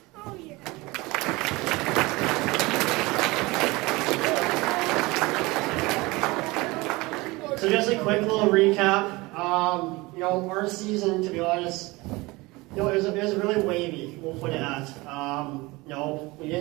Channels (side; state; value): left; quieter; 22.6 dB